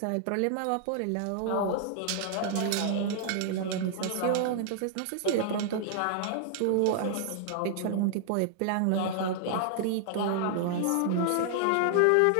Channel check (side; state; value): both; different; correlation -0.01